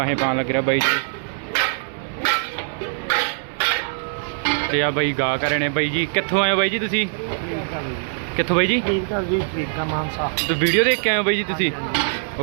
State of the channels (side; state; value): left; silent; digital silence